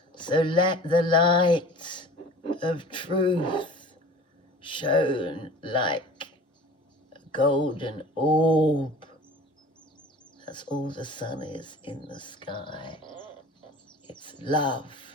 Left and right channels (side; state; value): both; normal; correlation 0.43